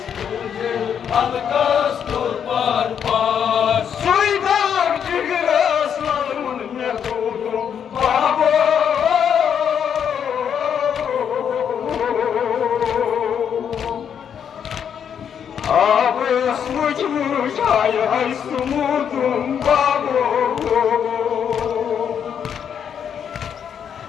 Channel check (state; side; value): quieter; right; 8.1 dB